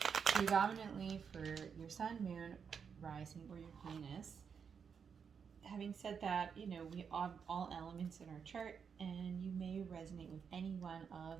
predominantly for your sun, moon, rising, or your Venus. Having said that, you know, we have all elements in our chart, and you may resonate with any one of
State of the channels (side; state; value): left; quieter; 6.6 dB